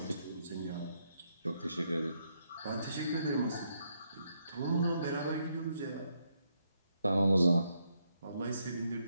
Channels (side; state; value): both; inverted; correlation -0.77